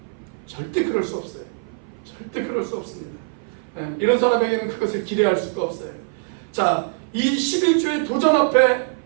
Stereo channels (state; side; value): silent; left; 57 dB below the other